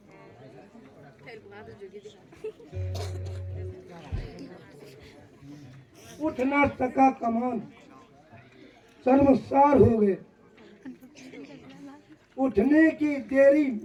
उठना टका कमान शर्मसार हो गए, उठने की देरी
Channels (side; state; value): both; identical; correlation 1.00